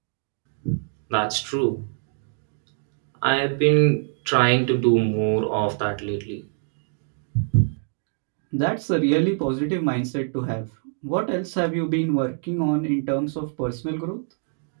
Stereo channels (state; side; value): silent; left; 62 dB below the other